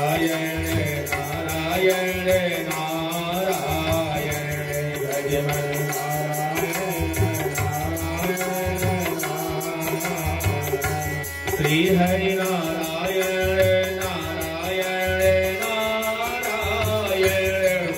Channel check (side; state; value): both; identical; correlation 1.00